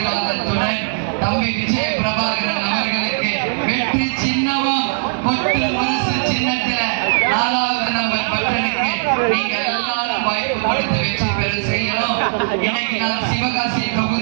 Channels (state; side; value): silent; left; digital silence